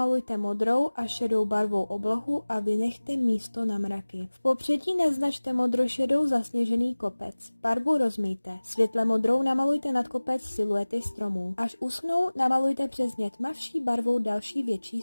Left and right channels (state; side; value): inverted; both; correlation -1.00